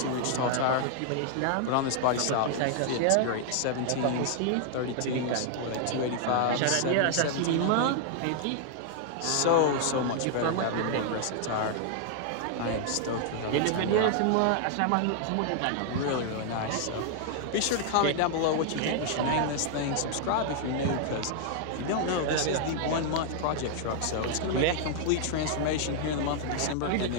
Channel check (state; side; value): different; both; correlation 0.00